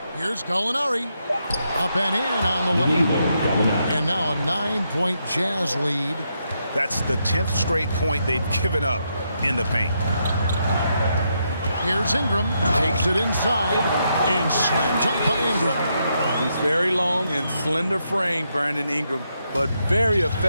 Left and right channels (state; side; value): inverted; both; correlation -0.80